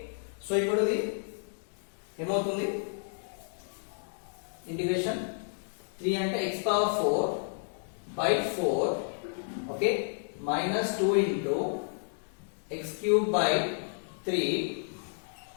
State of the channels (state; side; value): silent; right; digital silence